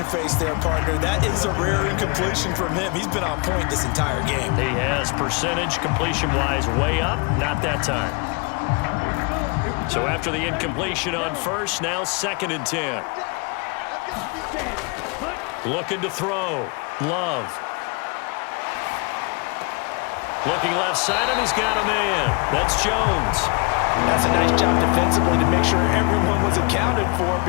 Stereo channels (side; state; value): right; quieter; 30.8 dB